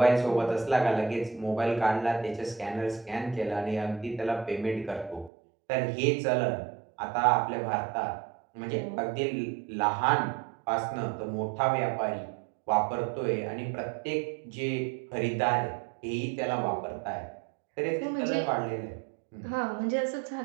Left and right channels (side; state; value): left; drops out; at 5.3 s